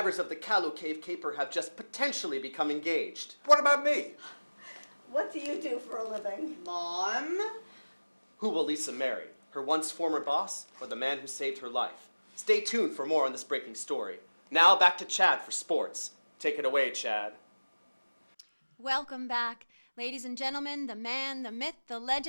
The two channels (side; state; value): both; inverted; correlation -1.00